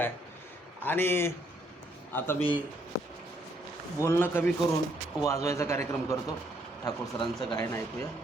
आणि आता मी बोलणं कमी करून वाजवायचा कार्यक्रम करतो. ठाकूर सरांचं गायन ऐकूया.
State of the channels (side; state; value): both; normal; correlation 0.70